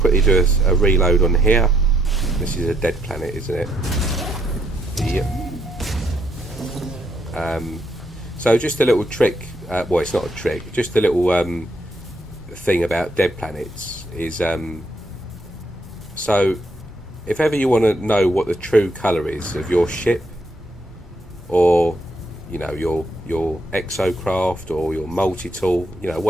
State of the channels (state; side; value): normal; both; correlation 0.73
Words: do a reload on here. This is a dead planet, isn't it? Yep. So just a little trick, well, it's not a trick, just a little thing about dead planets is, so if ever you want to know what the true colour is of your ship, or you know, your exocraft or your multi-tool, you know,